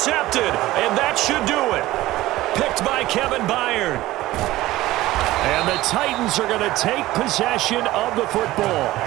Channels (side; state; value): left; quieter; 17.0 dB